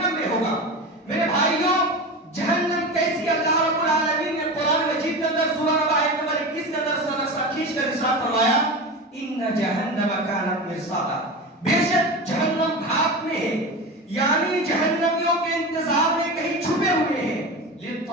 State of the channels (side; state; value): both; normal; correlation 0.26